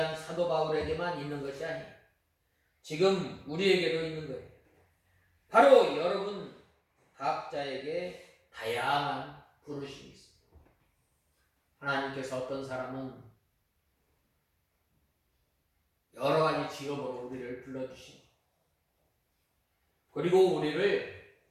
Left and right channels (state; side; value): identical; both; correlation 1.00